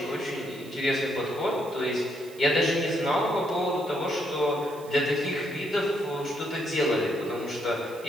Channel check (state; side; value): noise; right; hiss, 21 dB below the sound